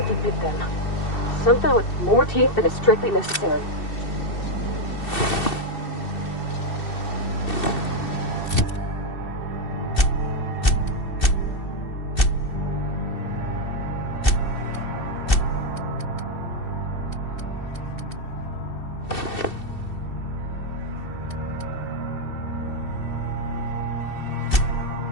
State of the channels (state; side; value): late; right; 2.7 ms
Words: bit them. Something with more teeth than is strictly necessary.